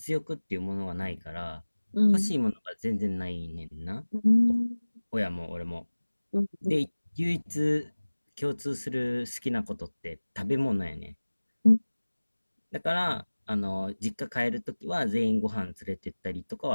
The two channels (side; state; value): both; inverted; correlation -1.00